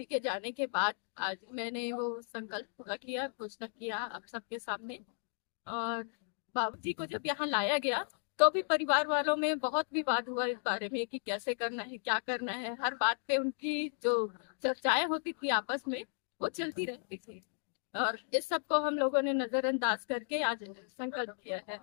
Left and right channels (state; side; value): silent; right; digital silence